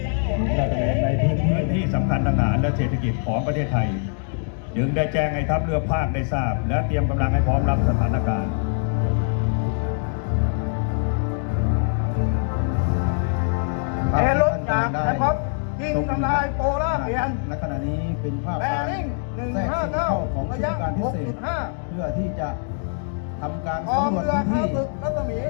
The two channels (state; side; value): silent; right; 56 dB below the other